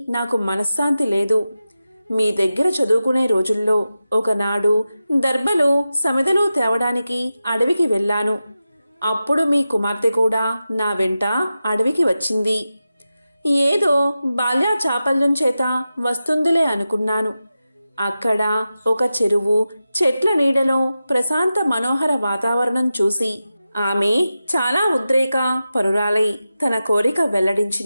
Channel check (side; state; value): both; inverted; correlation -0.92